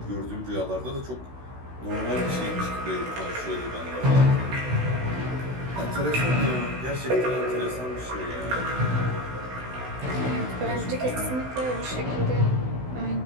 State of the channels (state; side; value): late; left; 16 ms